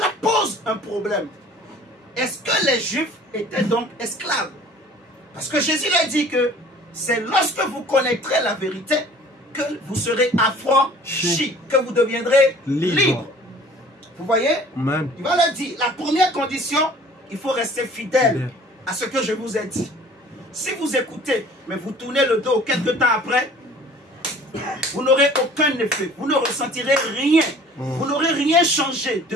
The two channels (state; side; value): normal; both; correlation 0.49